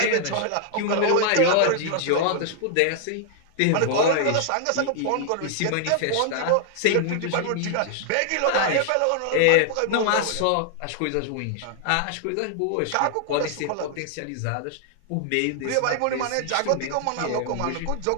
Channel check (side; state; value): both; different; correlation 0.00